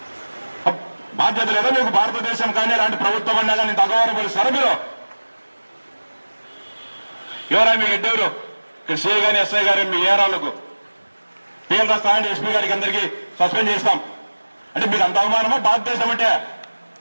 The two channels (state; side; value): inverted; both; correlation -1.00